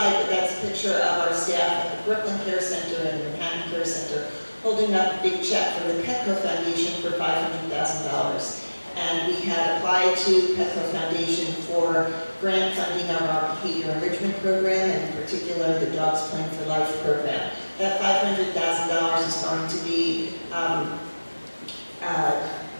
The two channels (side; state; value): both; inverted; correlation -1.00